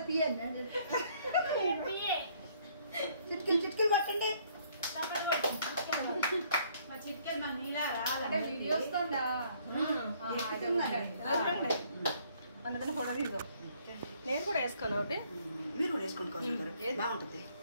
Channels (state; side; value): inverted; both; correlation -0.64